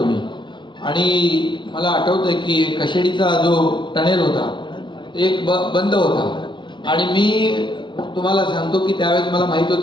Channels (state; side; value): late; right; 0.23 ms